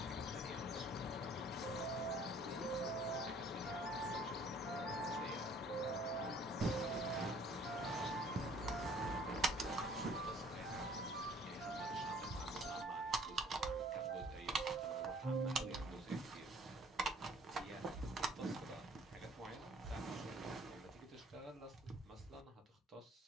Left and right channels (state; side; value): normal; both; correlation 0.56